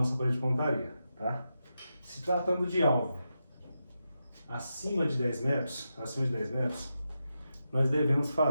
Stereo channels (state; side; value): inverted; both; correlation -0.88